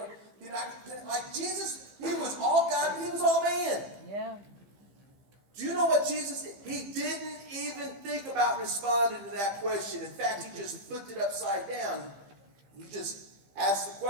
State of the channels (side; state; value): left; late; 15 ms